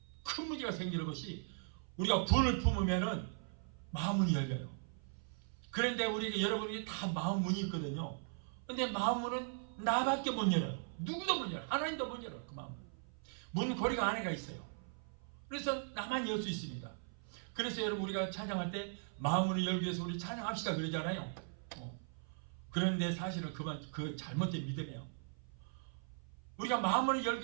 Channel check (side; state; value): left; silent; 52 dB below the other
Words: 큰 문제가 생기는 것이, 우리가 분을 품으면은 마음문이 열려요. 그런데 우리 여러분이 다 마음문이 있거든요. 근데 마음문은 나밖에 못 열어요. 누구도 못 열어요. 하나님도 못 열어요. 그 마음은 문고리가 안에가 있어요. 그래서 나만 열 수 있습니다. 그래서 여러분, 우리가 찬양할 때 마음문을 열기 위해서 우리 찬양합시다 그러잖아요. 그런데 사실은 그 잘못된 믿음이에요. 우리가 마음을 열기